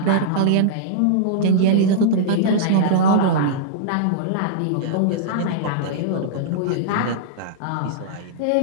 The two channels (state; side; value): different; both; correlation -0.02